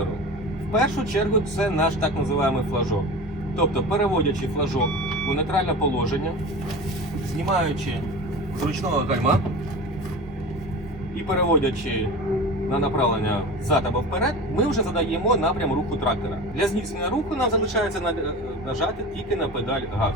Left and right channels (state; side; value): normal; both; correlation 0.32